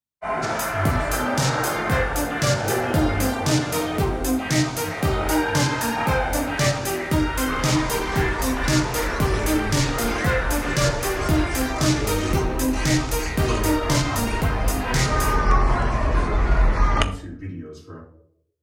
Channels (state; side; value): identical; both; correlation 1.00